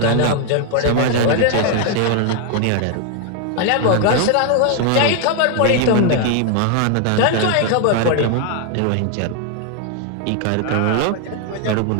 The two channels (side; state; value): both; different; correlation 0.01